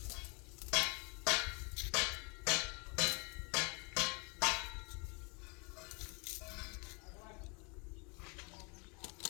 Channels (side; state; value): right; quieter; 32.7 dB